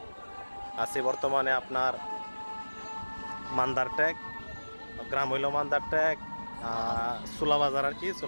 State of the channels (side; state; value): both; inverted; correlation -1.00